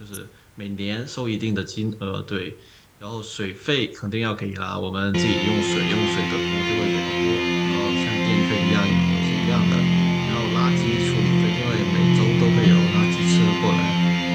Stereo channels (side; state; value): both; identical; correlation 1.00